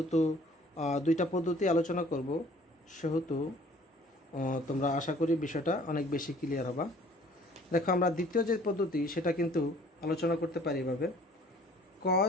দুইটা পদ্ধতি আলোচনা করব সেহেতু তোমরা আশা করি বিষয়টা অনেক বেশি ক্লিয়ার হবে। দেখো আমরা দ্বিতীয় যে পদ্ধতি সেটা কিন্তু আলোচনা করতে পারি এভাবে,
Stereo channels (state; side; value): normal; both; correlation 0.54